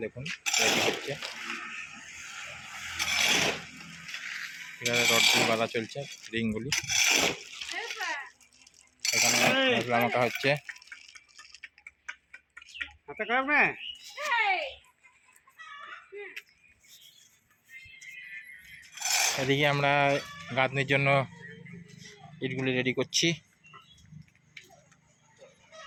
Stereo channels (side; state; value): both; identical; correlation 1.00